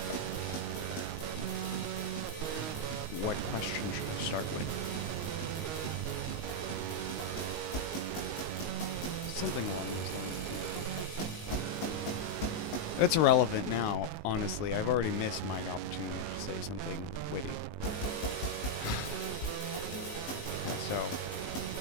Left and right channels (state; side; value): late; right; 19 ms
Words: what question should I start with? Something along those lines. It's irrelevant now, honestly. I've already missed my opportunity to say something witty. So,